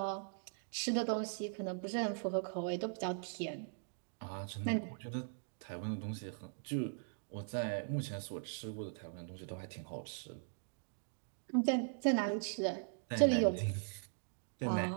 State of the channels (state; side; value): silent; left; digital silence